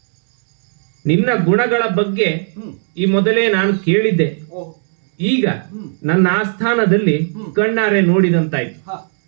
ನಿನ್ನ ಗುಣಗಳ ಬಗ್ಗೆ ಈ ಮೊದಲೇ ನಾನು ಕೇಳಿದ್ದೆ. ಈಗ ನನ್ನ ಆಸ್ಥಾನದಲ್ಲಿ ಕಣ್ಣಾರೆ ನೋಡಿದಂತಾಯ್ತು.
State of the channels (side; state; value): left; silent; digital silence